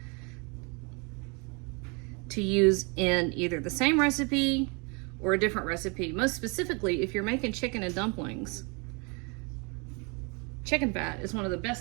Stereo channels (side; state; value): left; quieter; 31.7 dB